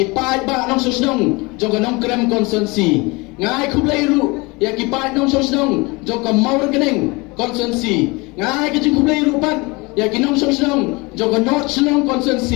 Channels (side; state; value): right; quieter; 25.6 dB